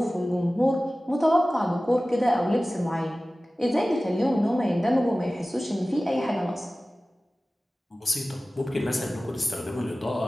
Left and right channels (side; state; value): both; normal; correlation 0.97